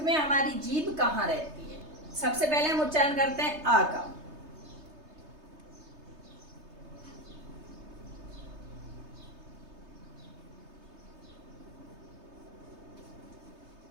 हमारी जीभ कहाँ रहती है। सबसे पहले हम उच्चारण करते हैं आ का,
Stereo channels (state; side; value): late; left; 3.3 ms